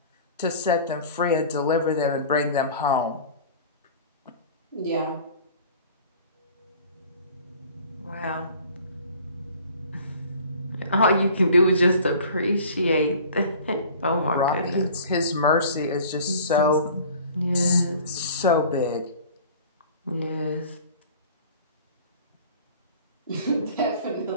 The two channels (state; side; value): inverted; both; correlation -0.45